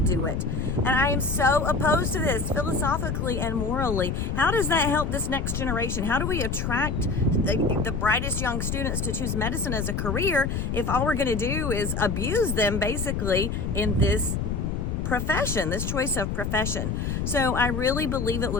do it. And I am so opposed to this philosophically and morally. How does that help this next generation? How do we attract the brightest young students to choose medicine as a career if all we're going to do is abuse them basically in this profession, this choice of profession? So I really believe it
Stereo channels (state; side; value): noise; left; rumble, 2 dB below the sound